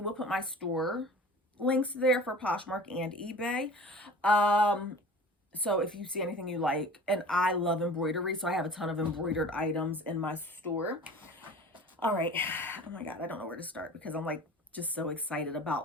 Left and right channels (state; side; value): normal; both; correlation 0.41